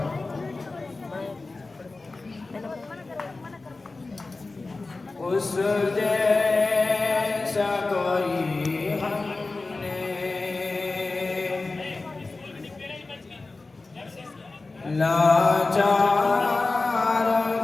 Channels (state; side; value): quieter; right; 3.5 dB